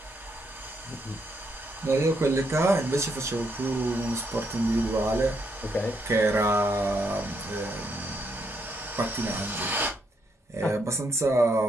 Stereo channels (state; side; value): normal; both; correlation 0.76